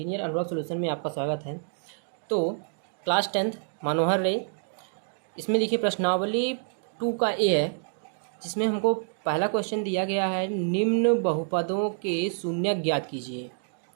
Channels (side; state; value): left; silent; 60 dB below the other